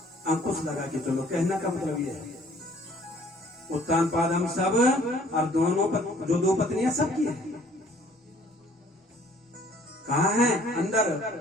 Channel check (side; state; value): both; normal; correlation 0.57